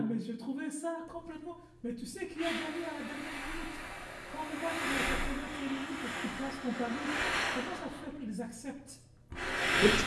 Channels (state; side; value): identical; both; correlation 1.00